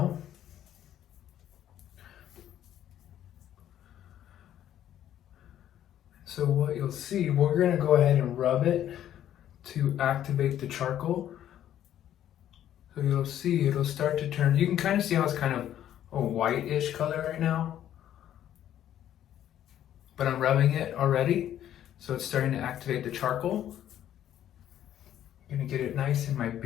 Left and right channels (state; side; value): quieter; right; 11.2 dB